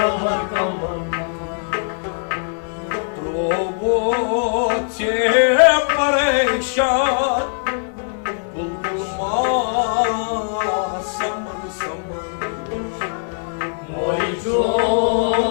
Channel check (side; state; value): right; silent; digital silence